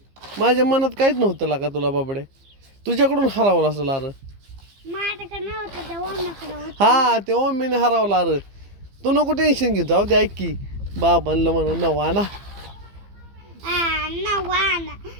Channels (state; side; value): late; left; 15 ms